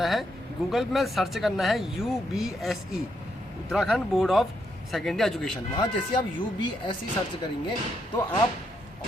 है, गूगल में सर्च करना है UBSE, Uttarakhand board of secondary education. वहाँ जैसे आप UBSE सर्च करेंगे तो आप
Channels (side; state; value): both; normal; correlation 0.78